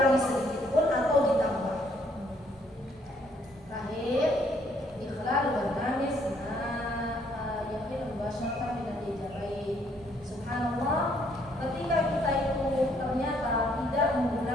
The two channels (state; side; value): normal; both; correlation 0.67